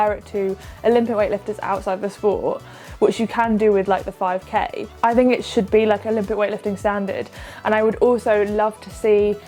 it to Olympic weightlifters outside the sport, which you can do with like the 5k, I think it should be like Olympic weightlifting standard. And I would also love to see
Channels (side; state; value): both; identical; correlation 1.00